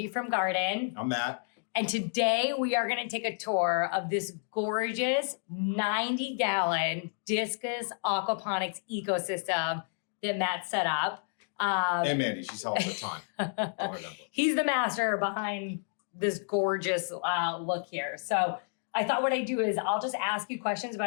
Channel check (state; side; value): silent; right; digital silence